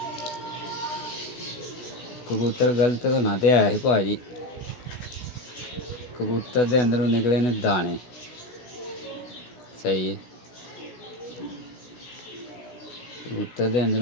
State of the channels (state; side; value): late; right; 16 ms